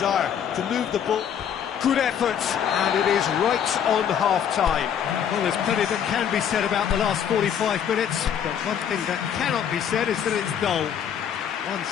to move the ball? Good effort, and it is right on half-time. Well, there's plenty that can be said about the last 45 minutes, but one thing that cannot be said is that it's dull.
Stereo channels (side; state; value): right; quieter; 8.7 dB